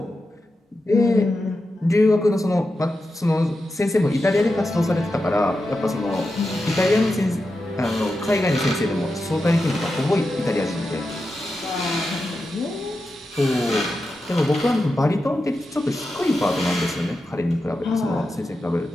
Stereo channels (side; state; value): both; normal; correlation 0.90